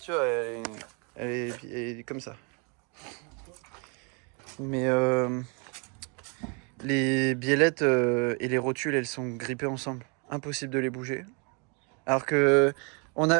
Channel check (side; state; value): left; quieter; 34.4 dB